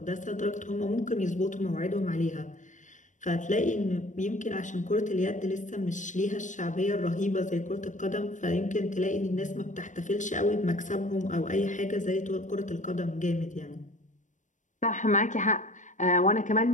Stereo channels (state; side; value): late; right; 0.36 ms